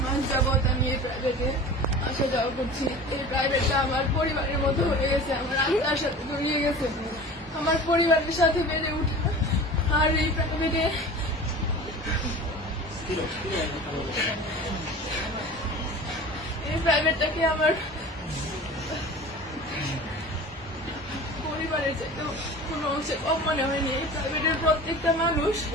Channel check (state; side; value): normal; both; correlation 0.38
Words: মাস যাবত আমি এই প্রাইভেটে আসা যাওয়া করছি। এই প্রাইভেটটা আমার পরিবারের মতো হয়ে গেছে, আমার আত্মার সাথে জড়িয়ে গেছে, আমার পরিবারের সাথে বেড়ে উঠা। আর এই প্রাইভেটটাকে আমার পরিবারের চাইতে কোনো অংশে কম মনে হয়নি। এই প্রাইভেটের প্রত্যেকটা মানুষ